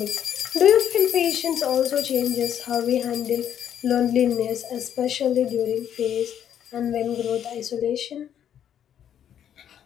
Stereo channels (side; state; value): right; quieter; 9.6 dB